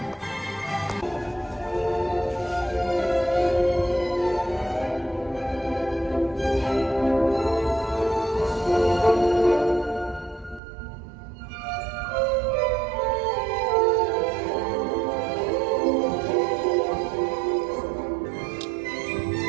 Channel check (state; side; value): drops out; left; at 10.6 s